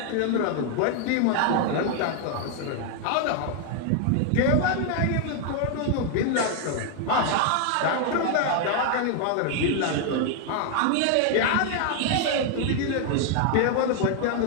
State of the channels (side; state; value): both; different; correlation 0.00